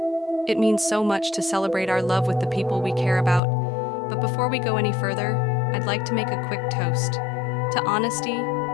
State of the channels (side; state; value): right; drops out; at 3.4 s